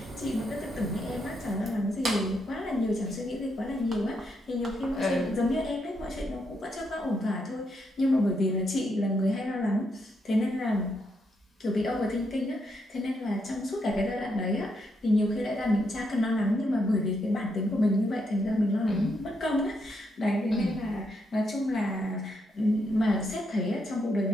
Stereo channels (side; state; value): both; normal; correlation 0.79